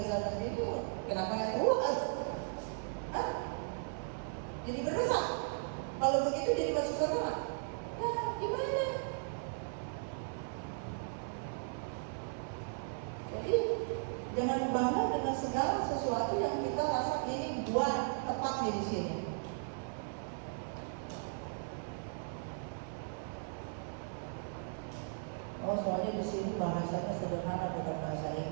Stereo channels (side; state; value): left; silent; 53 dB below the other